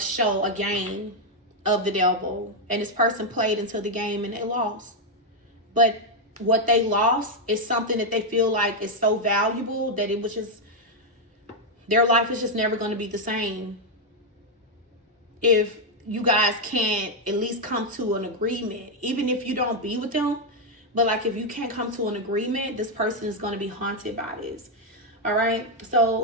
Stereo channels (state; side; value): normal; both; correlation 0.01